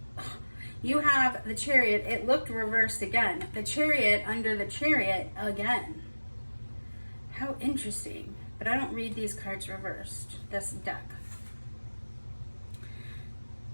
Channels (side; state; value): both; inverted; correlation -1.00